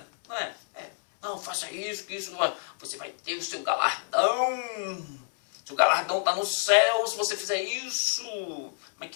Não é? Não, faça isso, que isso você vai ter o seu galardão. Seu galardão está no céu se você fizer isso. Mas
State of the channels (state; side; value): silent; right; 59 dB below the other